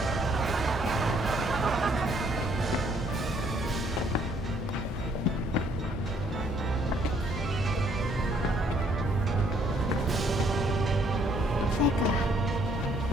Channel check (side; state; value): both; normal; correlation 0.66